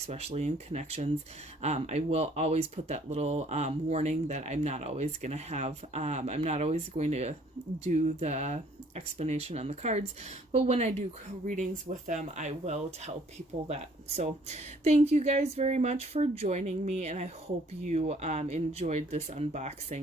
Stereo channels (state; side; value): normal; both; correlation 0.60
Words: in connections. I will always put that little warning that I'm not always going to have, I'm not always going to do the explanation on the cards, but when I do readings with them, I will tell people that. So thank you guys very much for joining me, and I hope you enjoyed this